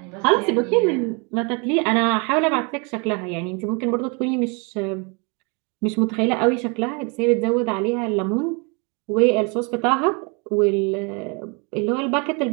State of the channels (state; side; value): quieter; left; 32.6 dB